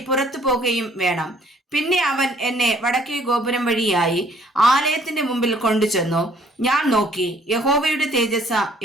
പുറത്തു പോകുകയും വേണം. പിന്നെ അവൻ എന്നെ വടക്കേ ഗോപുരം വഴിയായി ആലയത്തിന്റെ മുമ്പിൽ കൊണ്ടുചെന്നു. ഞാൻ നോക്കി, യഹോവയുടെ തേജസ്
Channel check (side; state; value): both; normal; correlation 0.60